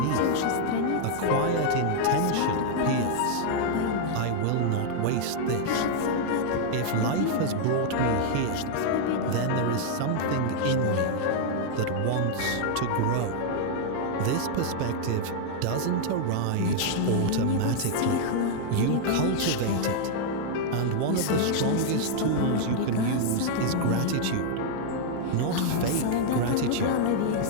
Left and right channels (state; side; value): different; both; correlation -0.01